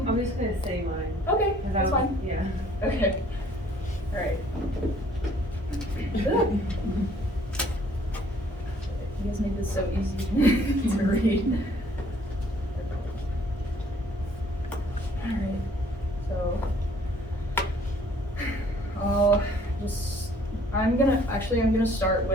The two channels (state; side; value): normal; both; correlation 0.59